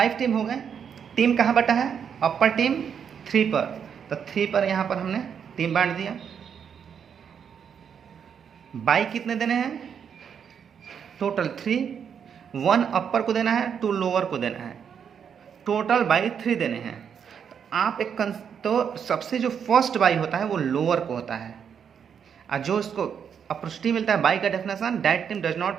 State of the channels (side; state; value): left; quieter; 7.5 dB